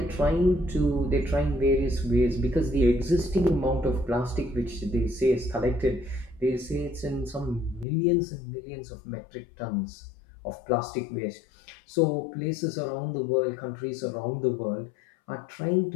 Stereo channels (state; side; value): drops out; right; at 7.9 s